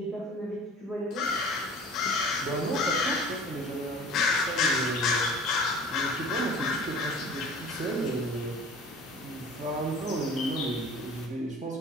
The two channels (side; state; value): both; normal; correlation 0.44